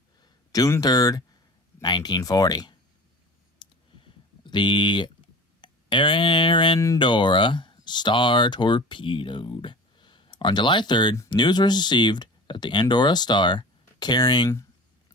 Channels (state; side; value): normal; both; correlation 0.38